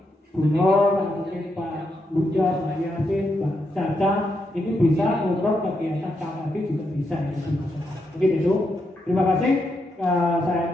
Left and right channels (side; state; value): both; normal; correlation 0.82